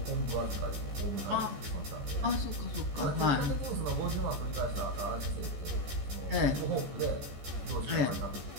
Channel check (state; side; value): late; left; 14 ms